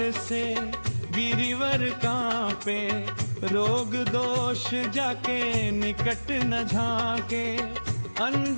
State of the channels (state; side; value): inverted; both; correlation -1.00